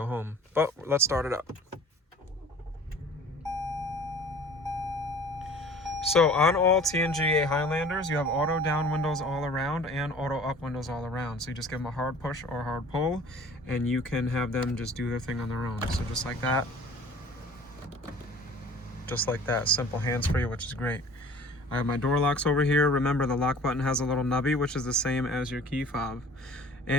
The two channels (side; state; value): both; normal; correlation 0.47